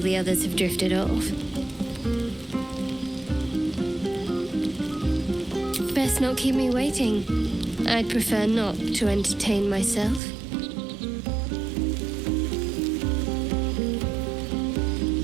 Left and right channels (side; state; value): left; drops out; at 10.2 s